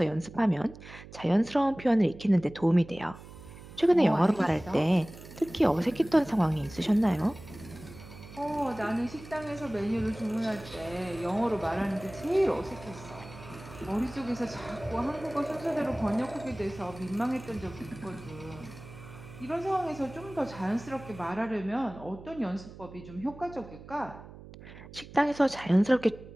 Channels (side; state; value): right; noise; hum, 17 dB below the sound